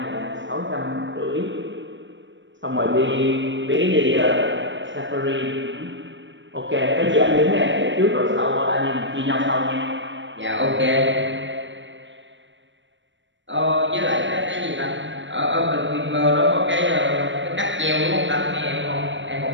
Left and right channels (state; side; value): late; left; 0.54 ms